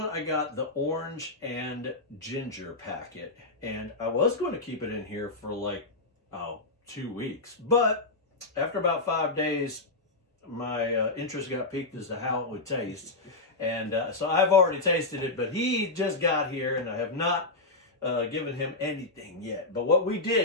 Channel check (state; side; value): quieter; right; 3.2 dB